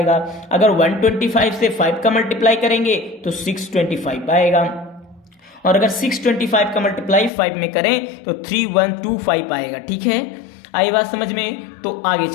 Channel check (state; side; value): drops out; right; at 7.3 s